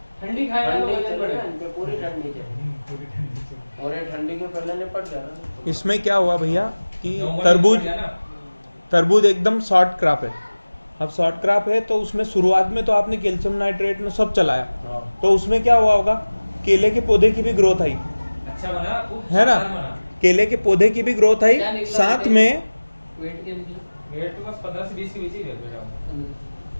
ठंडी खाएगा तो ठंडी वजन चलेगा, बढ़ेगा। इनपे पूरी ठंडी चलेगी, पूरी ठंडी से और ये ठंडी के पहले निपट गया ना। इसमें क्या हुआ भैया कि नवंबर में तरबूज कट गया ना। तरबूज एकदम शॉर्ट क्रॉप है। अब शॉर्ट क्रॉप है तो उसमें शुरुआत में तो आपने कैल्शियम नाइट्रेट में सब चलाया, तो उसमें क्या हुआ होगा, केले के पौधे की भी ग्रोथ आई, अच्छा बना, खूब है ना, शानदार बना। केले के पौधे की भी ग्रोथ आई, क्या निकला साथ बेटे? में वेट क्या निकला? वेट तो बस 15 से 20 के बीच ही वेट बेटा।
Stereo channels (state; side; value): inverted; both; correlation -1.00